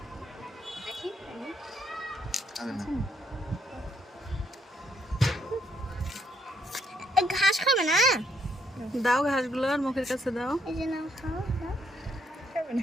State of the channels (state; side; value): normal; both; correlation 0.72